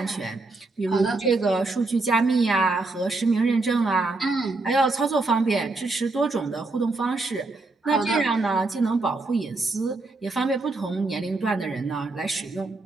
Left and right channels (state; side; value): quieter; left; 3.3 dB